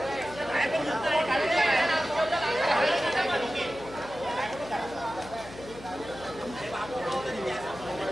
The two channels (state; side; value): noise; left; hum, 16 dB below the sound